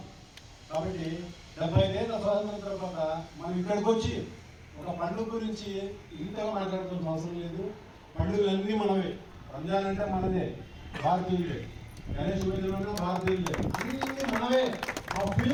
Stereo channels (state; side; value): identical; both; correlation 1.00